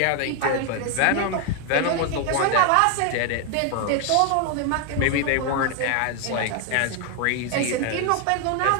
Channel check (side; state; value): both; different; correlation 0.01